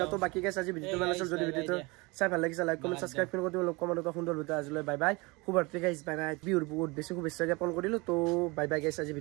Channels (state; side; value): quieter; left; 25.8 dB